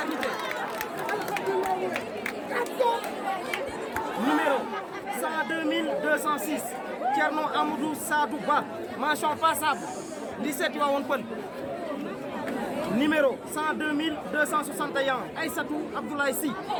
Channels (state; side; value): identical; both; correlation 1.00